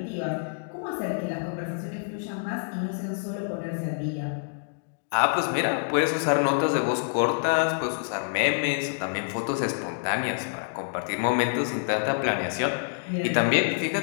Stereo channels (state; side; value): silent; right; digital silence